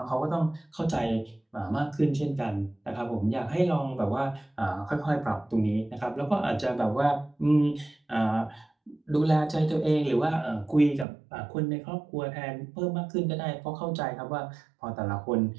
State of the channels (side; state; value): left; drops out; at 11.1 s